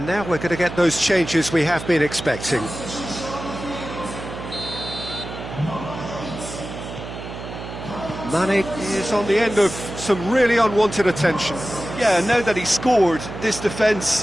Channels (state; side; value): noise; right; hum, 10 dB below the sound